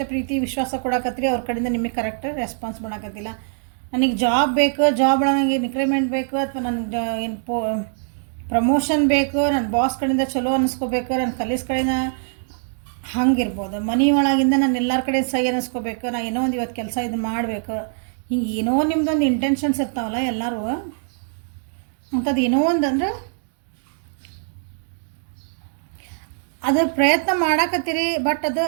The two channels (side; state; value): left; silent; digital silence